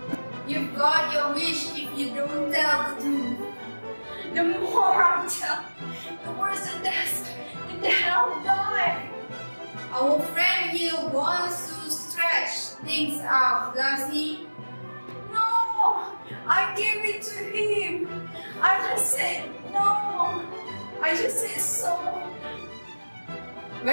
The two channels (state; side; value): inverted; both; correlation -1.00